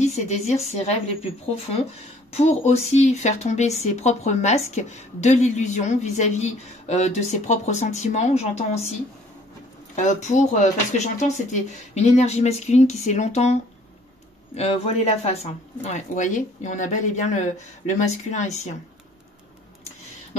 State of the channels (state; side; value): normal; both; correlation 0.57